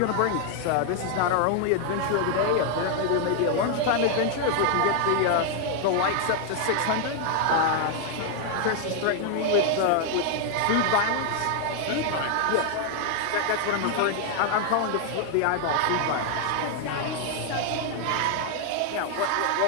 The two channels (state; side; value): different; both; correlation 0.00